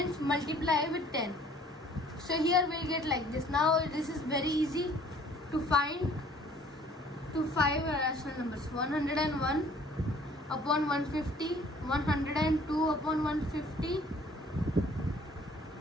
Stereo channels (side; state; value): both; normal; correlation 0.55